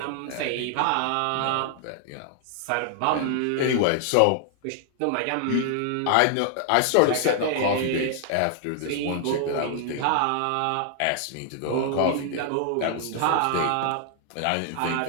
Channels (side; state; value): both; different; correlation 0.00